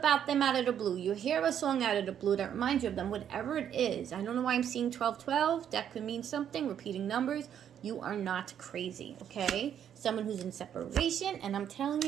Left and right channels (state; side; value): quieter; left; 9.3 dB